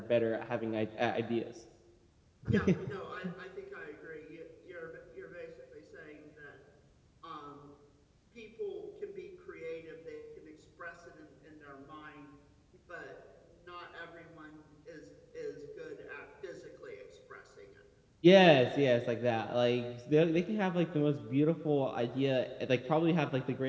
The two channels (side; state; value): both; identical; correlation 1.00